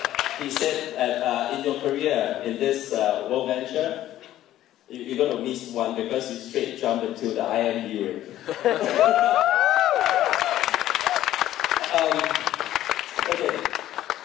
he said that in your career, in this WorldVenture, you're going to miss one because you straight jumped into the IMD ring. Okay.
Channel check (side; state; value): right; quieter; 13.3 dB